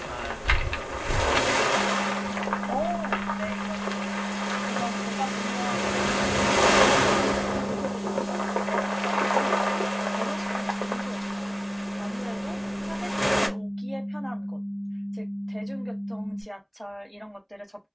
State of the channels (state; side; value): identical; both; correlation 1.00